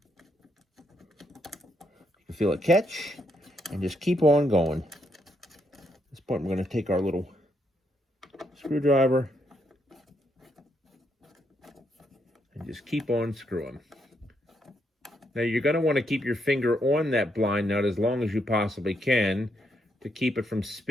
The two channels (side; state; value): both; normal; correlation 0.77